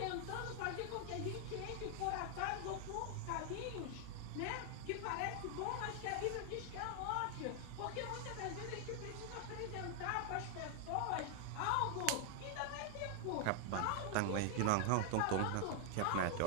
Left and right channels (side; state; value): both; different; correlation 0.00